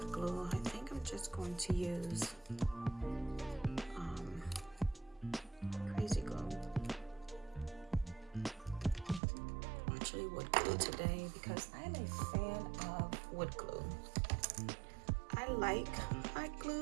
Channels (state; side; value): drops out; left; at 9.2 s